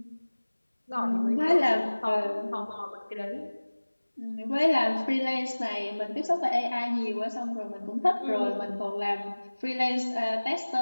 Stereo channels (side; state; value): both; inverted; correlation -1.00